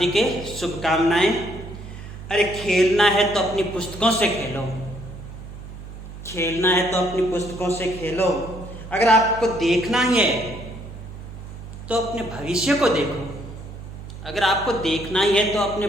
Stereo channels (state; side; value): noise; right; hum, 13 dB below the sound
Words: शुभकामनाएं। अरे खेलना है तो अपनी पुस्तकों से खेलो, खेलना है तो अपनी पुस्तकों से खेलो। अगर आपको देखना ही है तो अपने भविष्य को देखो। अगर आपको देखना ही है तो अपने